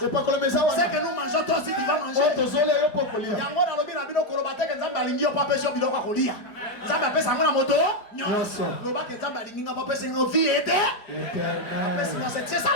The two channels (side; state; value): right; late; 4.6 ms